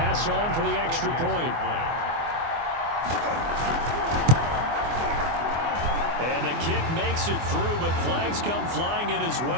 on for the extra point. And the kick makes it through, but flags come flying in as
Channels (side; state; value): left; late; 24 ms